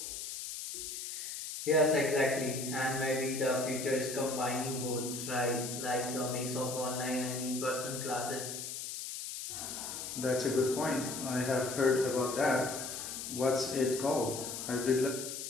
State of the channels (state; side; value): noise; left; hiss, 6 dB below the sound